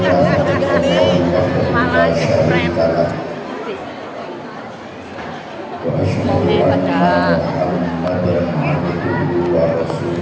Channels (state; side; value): identical; both; correlation 1.00